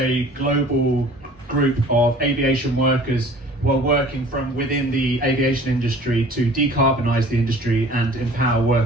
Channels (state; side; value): normal; both; correlation 0.48